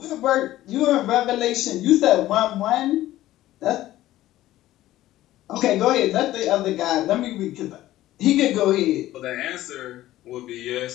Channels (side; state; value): right; quieter; 15.0 dB